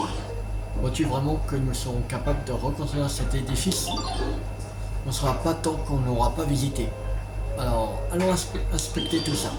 Vois-tu vraiment que nous serons capables de reconstruire cet édifice? On ne sera pas tant qu'on n'aura pas visité. Alors, allons inspecter tout ça.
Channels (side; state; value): both; identical; correlation 1.00